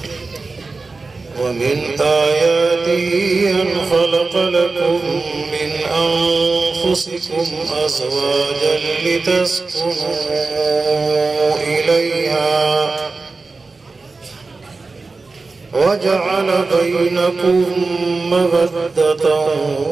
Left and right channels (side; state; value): left; quieter; 3.9 dB